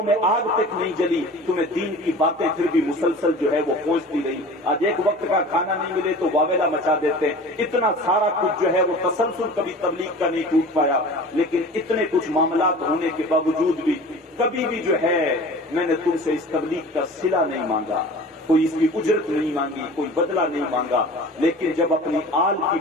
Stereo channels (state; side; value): normal; both; correlation 0.40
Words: میں آگ تک نہیں جلی، تمہیں دین کی باتیں پھر بھی مسلسل جو ہے وہ پہنچتی رہی۔ آج ایک وقت کا کھانا نہیں ملے تو واویلا مچا دیتے ہیں۔ اتنا سارا کچھ جو ہے وہ تسلسل کبھی تبلیغ کا نہیں ٹوٹ پایا، لیکن اتنے کچھ معاملات ہونے کے باوجود بھی کبھی بھی جو ہے میں نے تم سے اس تبلیغ کا صلہ نہیں مانگا، کوئی اس کی اجرت نہیں مانگی، کوئی بدلہ نہیں مانگا، لیکن جب اپنی آل کی